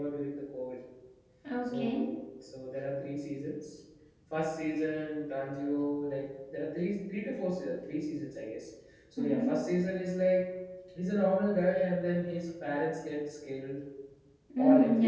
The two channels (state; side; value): identical; both; correlation 1.00